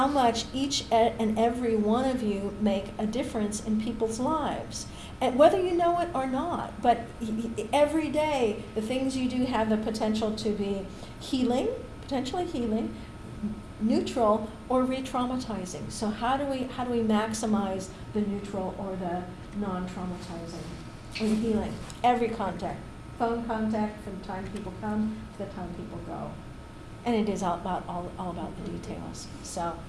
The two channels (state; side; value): identical; both; correlation 1.00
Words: much each and every one of you make a difference in people's lives, and whether you know it or not. But every day, the things you do have the potential to be potentially healing, neutral, or re-traumatizing. So how do we maximize the neutral or the non-traumatizing and healing? Every contact, phone contact, from the time people come to the time people go, and it is all about the details. So